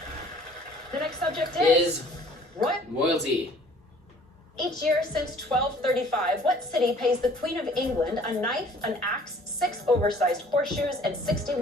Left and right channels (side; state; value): both; normal; correlation 0.54